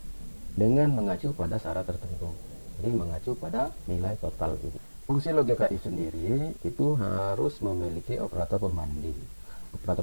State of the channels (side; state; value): both; inverted; correlation -1.00